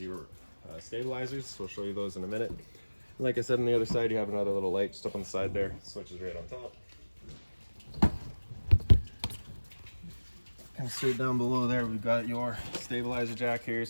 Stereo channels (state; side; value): inverted; both; correlation -1.00